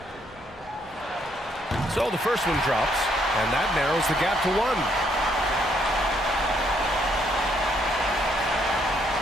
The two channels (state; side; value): normal; both; correlation 0.71